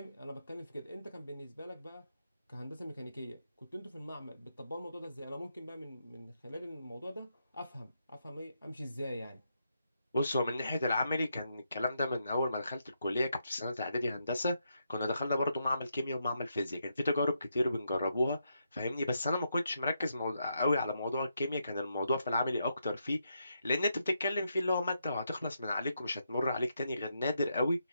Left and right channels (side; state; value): both; inverted; correlation -0.81